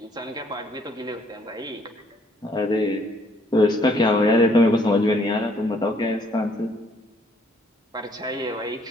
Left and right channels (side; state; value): both; normal; correlation 0.65